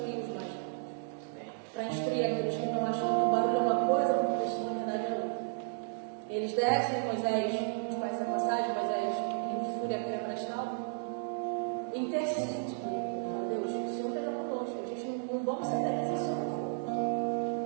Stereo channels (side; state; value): left; silent; digital silence